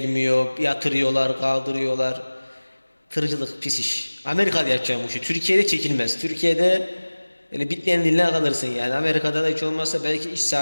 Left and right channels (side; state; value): both; inverted; correlation -1.00